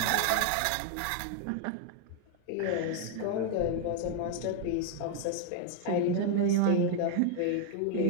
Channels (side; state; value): both; different; correlation 0.00